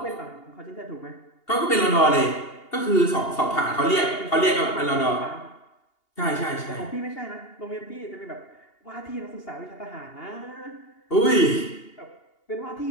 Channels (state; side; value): late; right; 2.8 ms